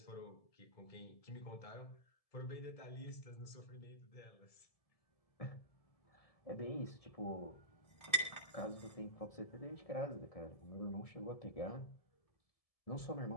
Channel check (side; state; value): right; late; 1.7 ms